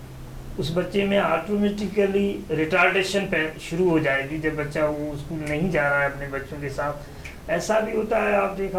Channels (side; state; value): both; identical; correlation 1.00